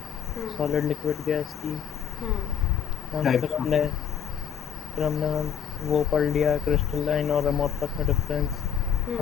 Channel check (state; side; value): quieter; right; 8.3 dB